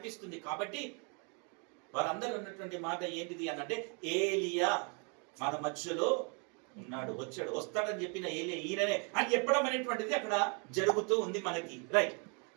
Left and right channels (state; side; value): quieter; left; 36.1 dB